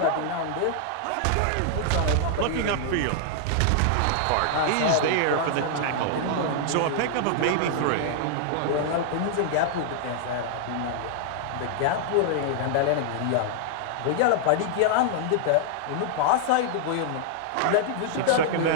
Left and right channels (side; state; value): both; different; correlation -0.01